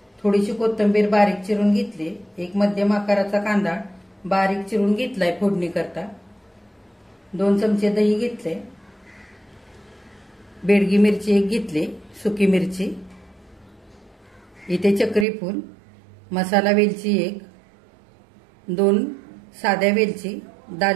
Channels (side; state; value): left; drops out; at 15.2 s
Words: थोडीशी कोथिंबीर बारीक चिरून घेतली, 1 मध्यम आकाराचा कांदा बारीक चिरून घेतलाय फोडणी करता, 2 चमचे दही घेतले, बेडगी मिरची 1 घेतली, सुकी मिरची, इथे चक्री फूल, मसाला वेलची 1, 2 साध्या वेलची,